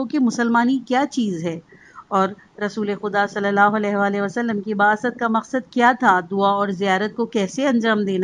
کہ مسلمانی کیا چیز ہے اور رسول خدا صلی اللہ علیہ وآلہ وسلم کی بعثت کا مقصد کیا تھا، دعا اور زیارت کو کیسے انجام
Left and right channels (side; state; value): both; identical; correlation 1.00